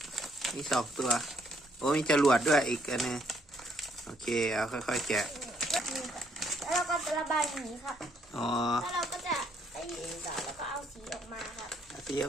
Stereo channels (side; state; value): both; normal; correlation 0.69